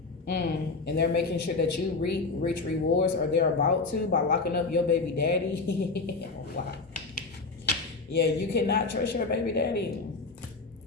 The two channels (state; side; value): quieter; right; 3.9 dB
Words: And they're making sure that you reach rewards, or they're about to, by locking up your baby daddy. Wow. Yeah, you cannot trust your baby daddy.